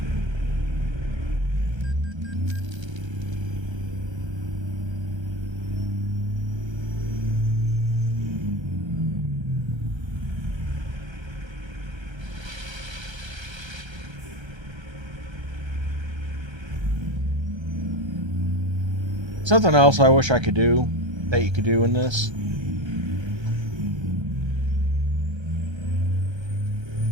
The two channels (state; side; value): late; left; 1.3 ms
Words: Something else I wish I could do, that you could do in this,